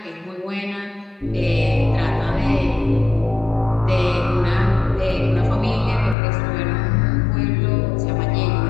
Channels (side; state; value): right; drops out; at 6.2 s